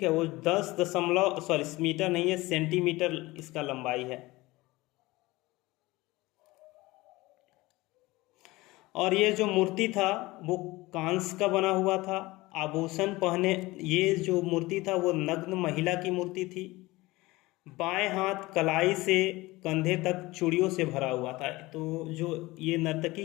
है, वो 10 मीटर नहीं है, सेंटीमीटर इसका लंबाई है। और ये जो मूर्ति था वो कांस्य का बना हुआ था, आभूषण पहने, ये जो मूर्ति था वो नग्न महिला की मूर्ति थी। बाएं हाथ कलाई से कंधे तक चूड़ियों से भरा हुआ था। तो जो ये नर्तकी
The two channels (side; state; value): right; quieter; 20.4 dB